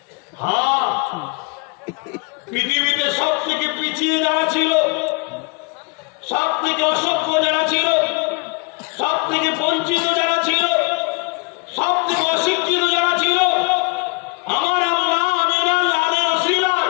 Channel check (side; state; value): right; quieter; 31.4 dB